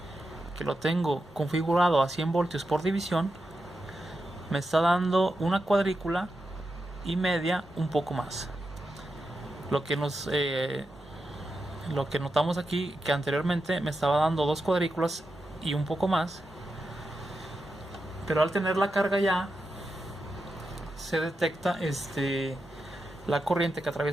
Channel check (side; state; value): both; normal; correlation 0.88